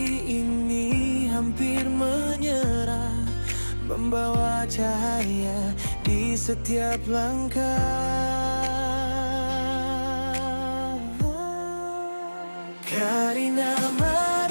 ini hampir menyerah, membawa cahaya di setiap langkah. Karina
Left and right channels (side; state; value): both; inverted; correlation -1.00